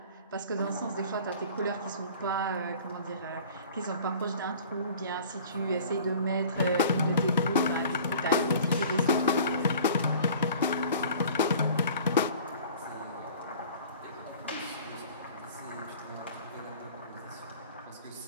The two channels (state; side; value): inverted; both; correlation -0.46